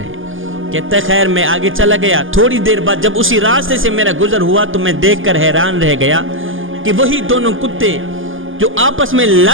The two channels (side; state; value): left; late; 0.58 ms